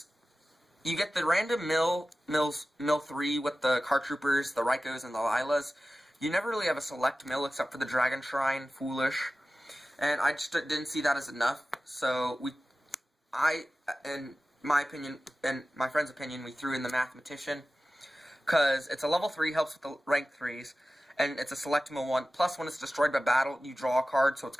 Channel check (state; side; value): normal; both; correlation 0.96